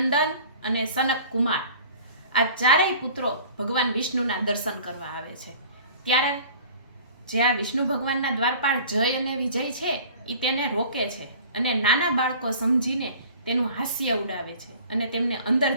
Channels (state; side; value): inverted; both; correlation -0.46